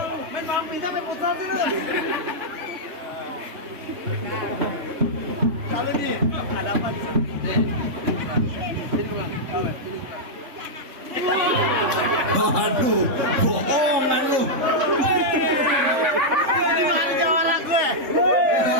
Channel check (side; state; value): left; late; 3.2 ms